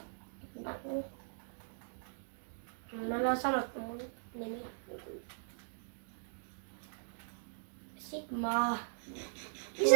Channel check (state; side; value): silent; left; digital silence